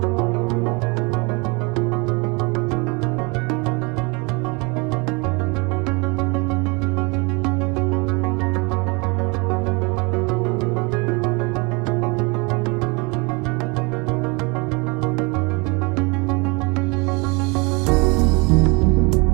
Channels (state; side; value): quieter; left; 29.3 dB